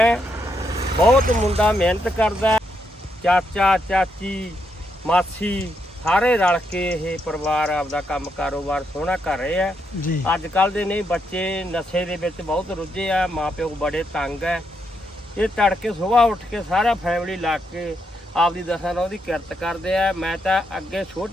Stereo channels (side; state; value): both; normal; correlation 0.80